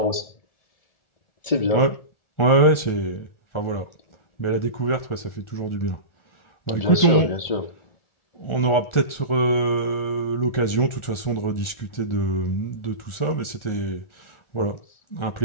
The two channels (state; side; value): late; right; 1.4 ms